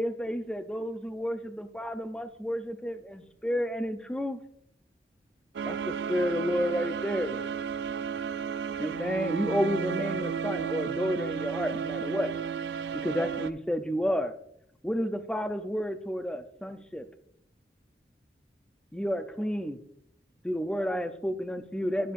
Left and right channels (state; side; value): normal; both; correlation 0.73